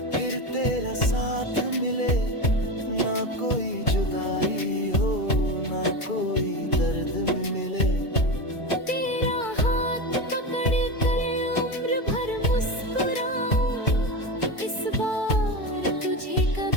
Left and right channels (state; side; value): late; right; 2.3 ms